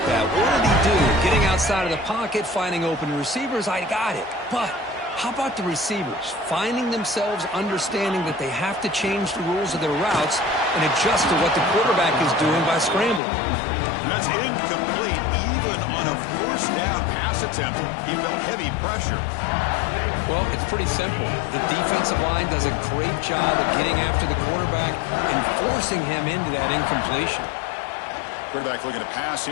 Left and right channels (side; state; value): right; drops out; at 13.2 s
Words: that. What did he do? Getting outside of the pocket, finding open receivers, I got it. But how about the receivers? Finding themselves understanding that they have to change the rules of their routes and adjust to what the quarterback is doing by scrambling. That's incomplete. Even on a first down pass attempt, he felt heavy pressure. Well, it's pretty simple. The defensive line does a great job of getting after the quarterback and forcing him into that incompletion. Quarterback looking to pass